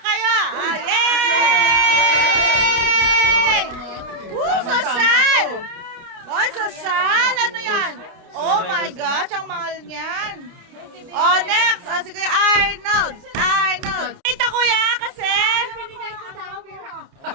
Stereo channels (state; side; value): late; left; 29 ms